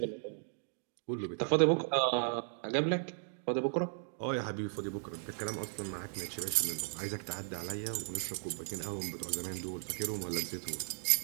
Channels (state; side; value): silent; left; digital silence